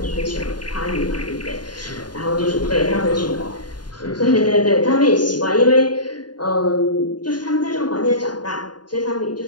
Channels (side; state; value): right; late; 0.70 ms